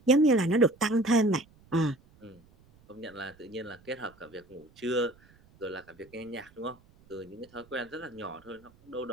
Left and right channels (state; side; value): noise; right; rumble, 28 dB below the sound